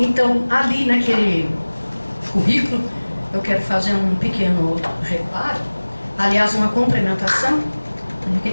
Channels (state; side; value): inverted; both; correlation -1.00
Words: ali naquele currículo eu quero fazer um pequeno reparo, aliás uma complementação. O que a